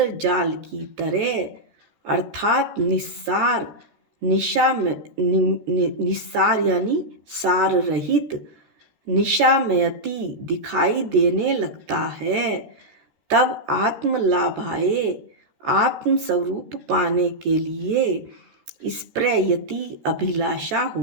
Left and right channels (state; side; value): late; left; 14 ms